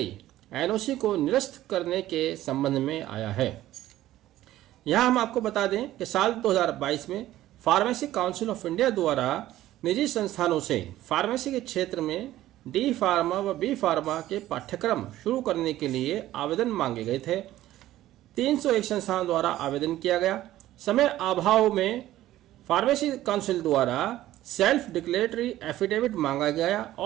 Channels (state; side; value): quieter; left; 14.4 dB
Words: एनओसी को निरस्त करने के संबंध में आया है। यहाँ हम आपको बता दें कि साल 2022 में फार्मेसी काउंसिल ऑफ इंडिया द्वारा निजी संस्थानों से फार्मेसी के क्षेत्र में डी फार्मा व बी फार्मा के पाठ्यक्रम शुरू करने के लिए आवेदन मांगे गए थे। 301 संस्थानों द्वारा आवेदन किया गया। समय अभाव में फार्मेसी काउंसिल द्वारा सेल्फ डिक्लेरेटरी एफिडेविट मांगा गया